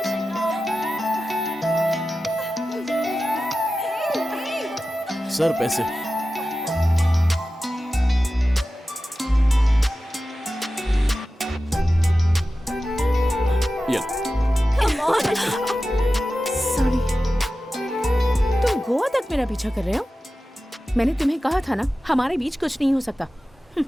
सर पैसे। ये सॉरी। तुम गोवा तक मेरा पीछा कर रहे हो? मैंने तुम्हें कहा था ना, हमारे बीच कुछ नहीं हो सकता।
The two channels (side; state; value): both; normal; correlation 0.94